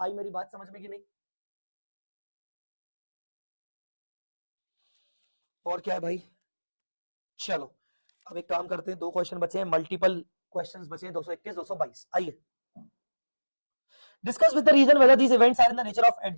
आई मेरी बात समझ में कि नहीं? और क्या है भाई, चलो अब एक काम करते हैं, 2 क्वेश्चन बचे हैं, मल्टीपल क्वेश्चंस बचे हैं, 221 222। आइए discuss with the reason whether these events are in the nature of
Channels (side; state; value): both; inverted; correlation -1.00